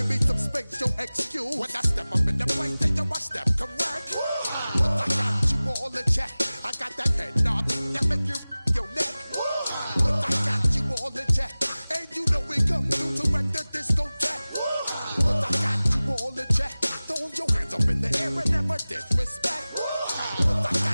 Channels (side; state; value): both; inverted; correlation -0.98